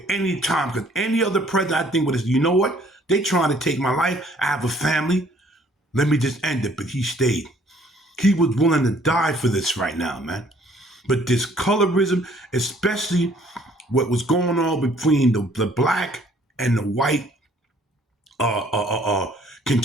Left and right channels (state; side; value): normal; both; correlation 0.60